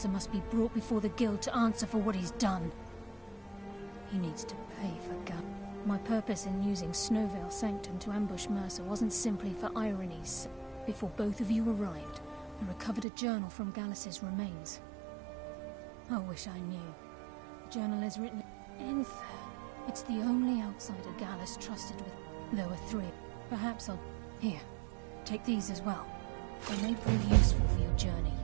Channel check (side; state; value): left; drops out; at 13.1 s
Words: must be brought before the Guild to answer for what he's done. He needs to pay for Gallus. My purpose in using Snowveil Sanctum to ambush Mercer wasn't simply for irony's. Before both of you arrived, I recovered a journal from Gallus's remains. I wish I knew. The journal is written in Enther. It's the only outsider Gallus trusted with. There were 3. Perhaps I'll... Here, take these as well. They may prove useful for your journey.